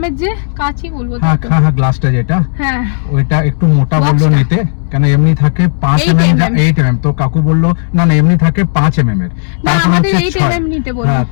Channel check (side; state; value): right; silent; digital silence